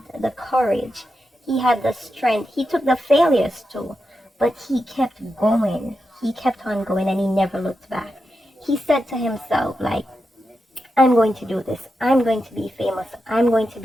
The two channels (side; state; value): both; normal; correlation 0.88